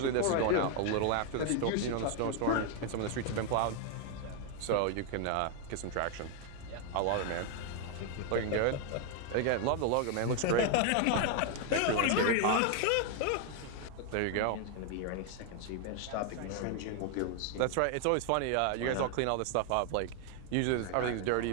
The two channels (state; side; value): different; both; correlation 0.00